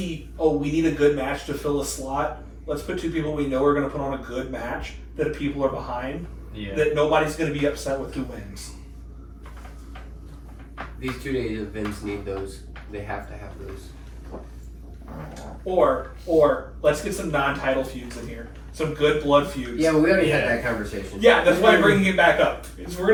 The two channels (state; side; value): identical; both; correlation 1.00